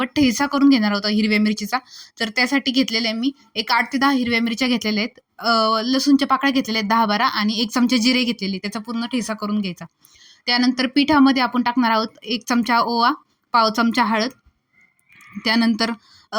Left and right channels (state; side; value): identical; both; correlation 1.00